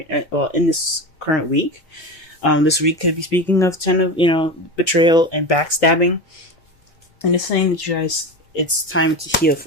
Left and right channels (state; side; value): normal; both; correlation 0.25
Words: this current week. This week could be speaking of betrayal and backstabbing, and it's saying that you guys, it's time to heal